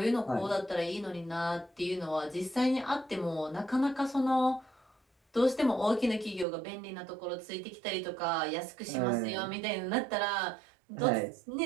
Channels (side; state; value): left; drops out; at 6.5 s